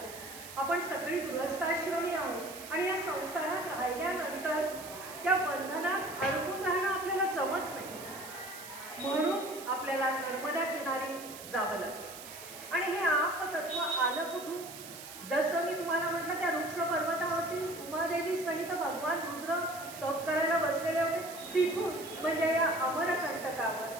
आपण सगळी गृहस्थाश्रमी आहोत आणि या संसारात राहिल्यानंतर त्या बंधनात अडकून राहणं आपल्याला जमत नाही. म्हणून आपल्याला नर्मदा किनारी जावं लागतं. आणि हे आपतत्व आलं कुठून? जसं मी तुम्हाला म्हटलं, त्या वृक्ष पर्वतावरती उमादेवी सहित भगवान रुद्र तप करायला बसलेले होते, तिथून म्हणजे या अमरकंटकावर.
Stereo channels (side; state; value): right; noise; hiss, 13 dB below the sound